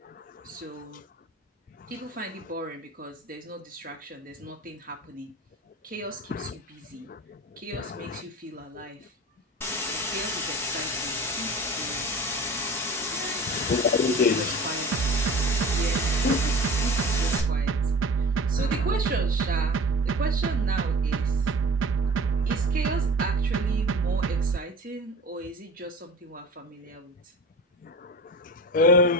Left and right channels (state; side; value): normal; both; correlation 0.37